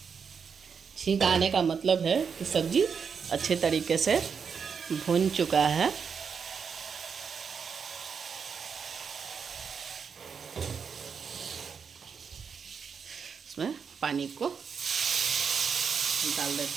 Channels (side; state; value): left; quieter; 6.3 dB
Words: छींक आने का मतलब है कि सब्जी अच्छे तरीके से भुन चुका है। इसमें पानी को डाल